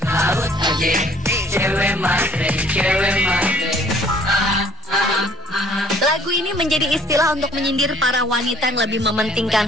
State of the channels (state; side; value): normal; both; correlation 0.57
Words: Laut aja, cewek matre, cewek matre. Lagu ini menjadi istilah untuk menyindir para wanita yang lebih mementingkan